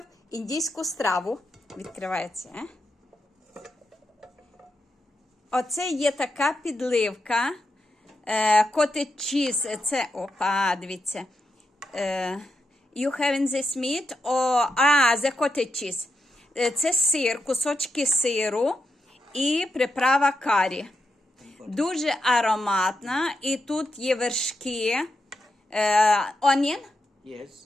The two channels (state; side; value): normal; both; correlation 0.85